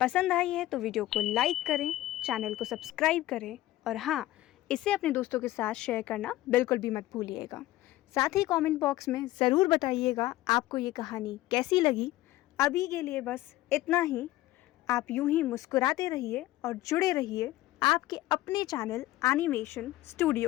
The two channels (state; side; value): quieter; right; 16.1 dB